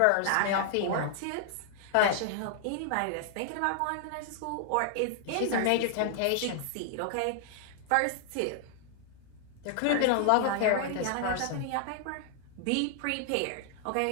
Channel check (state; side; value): different; both; correlation 0.00